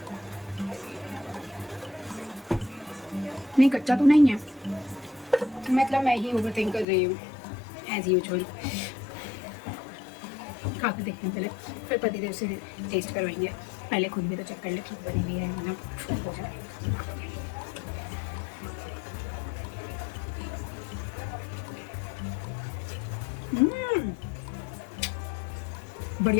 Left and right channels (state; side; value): drops out; right; at 6.9 s